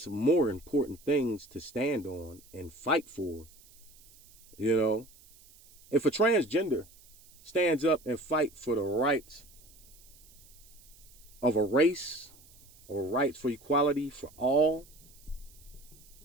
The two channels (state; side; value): noise; right; hiss, 25 dB below the sound